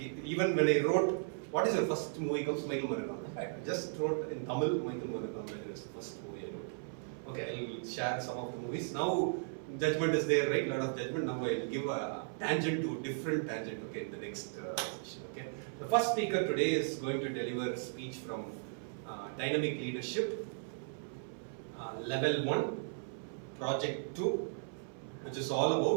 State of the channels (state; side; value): silent; left; 54 dB below the other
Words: when I wrote, what is your first movie comes, Michael Managam. I just wrote in Tamil, Michael Managam, that is the first movie I wrote. Okay, I'll share some of the movies. Now, judgment is there, right? Lot of judgment. Now I'll give a tangent to different tangent, okay, in the next session, okay. The first speaker today is going to deliver a speech from Dynamic Leadership, Level 1, Project 2, which is all